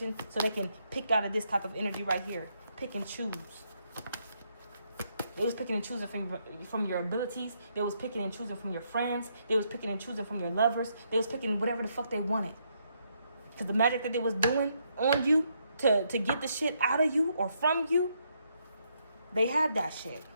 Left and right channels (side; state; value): both; inverted; correlation -0.76